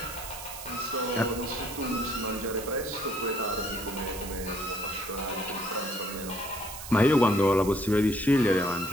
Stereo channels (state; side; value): noise; right; hiss, 11 dB below the sound